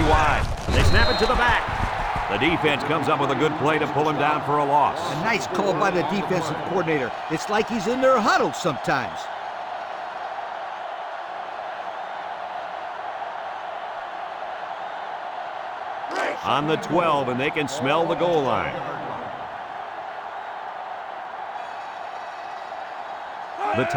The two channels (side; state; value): both; identical; correlation 1.00